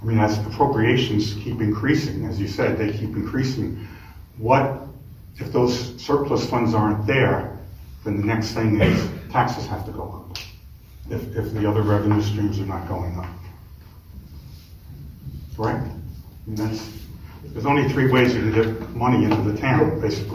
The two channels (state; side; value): identical; both; correlation 1.00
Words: I mean, as appropriations keep increasing, as you said, they keep increasing. What if those surplus funds aren't there? Then the next thing is taxes have to go up. If the other revenue streams are not going up, correct? I mean, there's only 3 ways you can get money into the town,